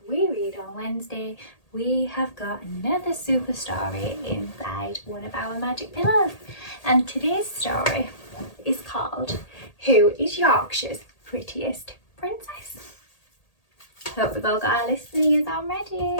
We Read on Wednesday, we have got another super story inside one of our magic pillows. And today's story is called Who is Yorkshire's Prettiest Princess? Hope we've all got our listeners on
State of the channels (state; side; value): late; right; 1.8 ms